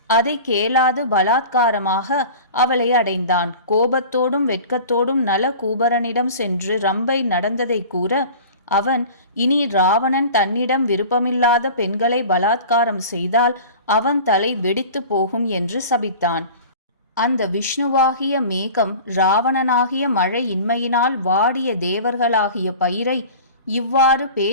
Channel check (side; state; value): both; inverted; correlation -0.39